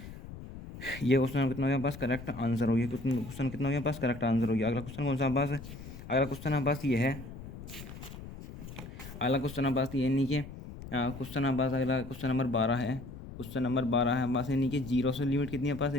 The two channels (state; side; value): noise; left; rumble, 13 dB below the sound